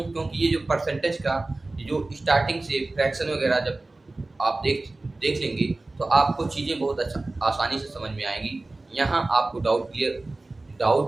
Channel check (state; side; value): quieter; left; 3.0 dB